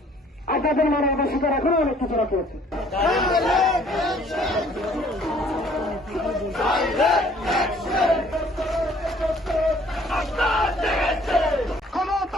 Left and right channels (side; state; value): both; normal; correlation 0.58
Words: আপনাদের মানবতা শিখার এখনো অনেক কিছু রাখা আছে।